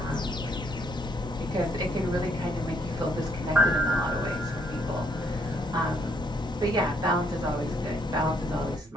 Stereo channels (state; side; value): normal; both; correlation 0.69